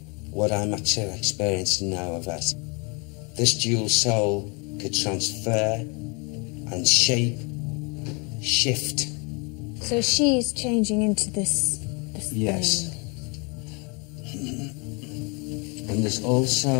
what I'm actually experiencing now of it. This dual soul could transfer and shape, shift. So she's changing into this Yes. thing. And there's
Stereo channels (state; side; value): quieter; right; 32.1 dB